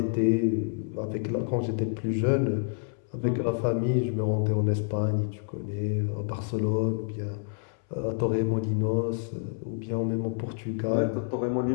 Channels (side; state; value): right; silent; 59 dB below the other